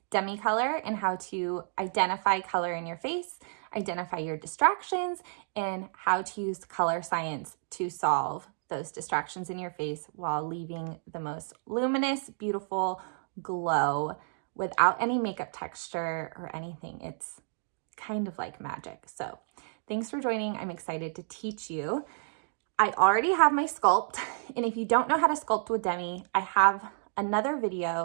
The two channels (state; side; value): silent; left; digital silence